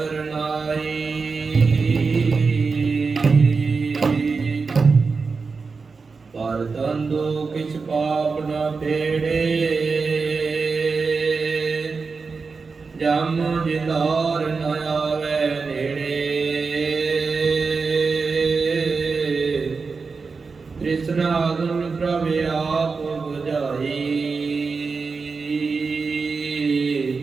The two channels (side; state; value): left; quieter; 4.6 dB